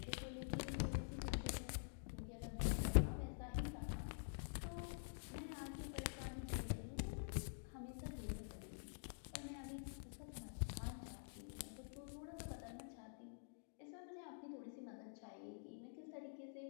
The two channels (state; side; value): silent; right; digital silence